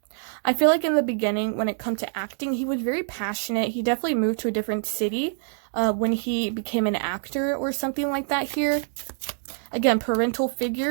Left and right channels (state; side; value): silent; left; digital silence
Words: I feel like in the beginning, when it comes to acting, he was very passionate. He definitely moved to a different city when he became an actor or something like that here. Again, parental